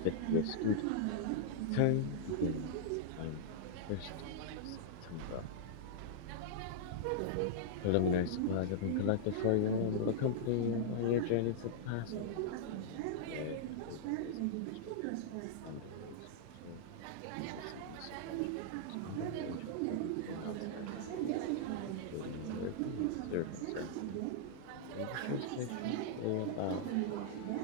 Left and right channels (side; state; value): both; different; correlation -0.02